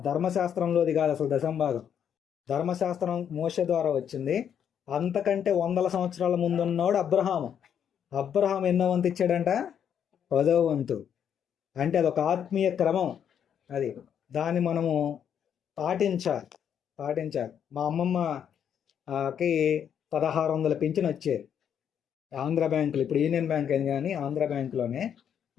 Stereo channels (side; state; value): right; quieter; 8.6 dB